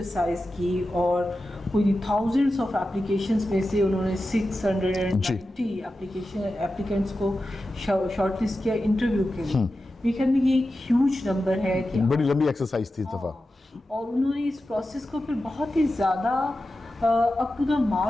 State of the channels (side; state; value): both; normal; correlation 0.92